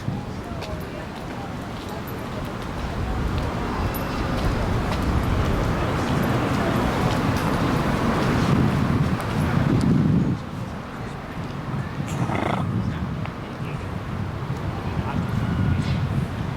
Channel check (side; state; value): both; identical; correlation 1.00